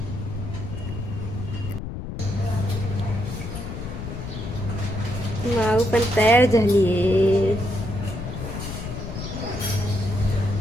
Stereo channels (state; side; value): noise; left; rumble, 7 dB below the sound